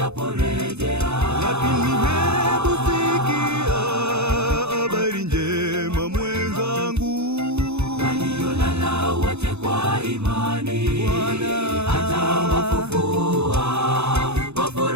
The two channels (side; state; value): left; late; 0.81 ms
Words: lakini hebu sikia habari njema mwenzangu, waliolala wote kwa imani atawafufua. Kwa